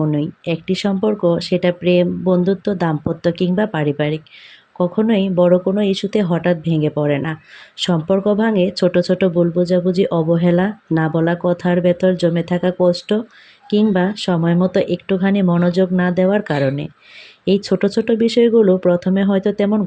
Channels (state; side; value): identical; both; correlation 1.00